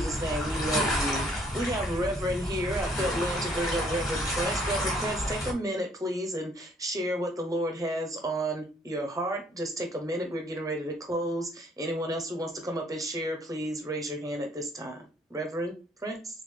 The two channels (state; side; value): normal; both; correlation 0.63